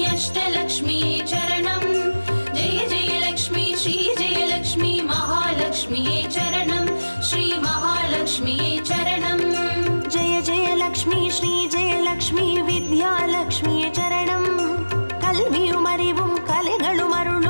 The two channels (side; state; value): both; inverted; correlation -1.00